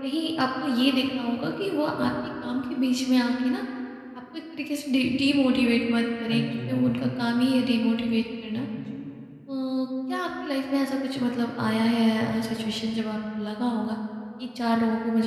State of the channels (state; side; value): identical; both; correlation 1.00